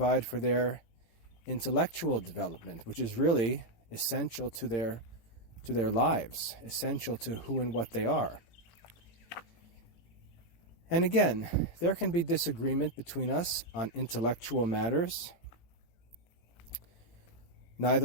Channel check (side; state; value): right; late; 18 ms